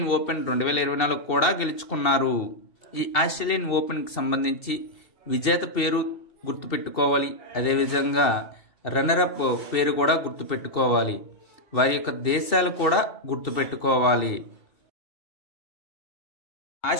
ఓపెన్ 2024 కూడా గెలుచుకున్నారు. ఈ ఆస్ట్రేలియన్ ఓపెన్కి సంబంధించి విజేత పేరు గుర్తుపెట్టుకోవాలి, అదేవిధంగా రన్నరప్ పేరు కూడా గుర్తుపెట్టుకోవాలి, వారి యొక్క దేశాలు కూడా గుర్తుపెట్టుకోవాలి.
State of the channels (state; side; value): late; right; 2.7 ms